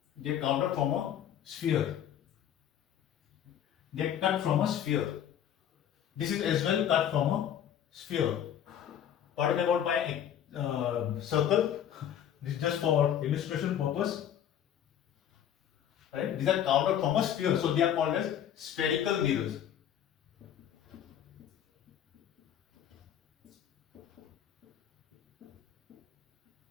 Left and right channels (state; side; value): quieter; right; 9.8 dB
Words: They are carved out from a sphere. They are cut from a sphere. This is as well cut from a sphere. Talking about my circle, this is just for illustration purpose. Right? These are carved out from a sphere, so they are called as spherical mirrors.